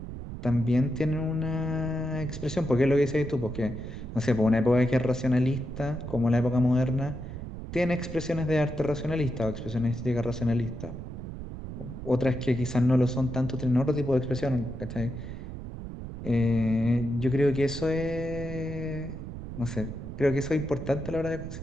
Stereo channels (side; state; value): right; noise; rumble, 9 dB below the sound